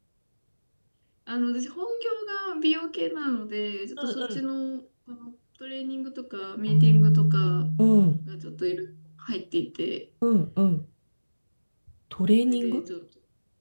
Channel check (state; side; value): inverted; both; correlation -1.00